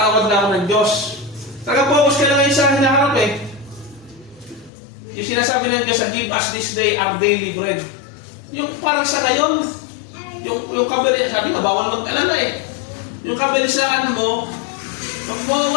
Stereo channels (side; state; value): right; drops out; at 4.7 s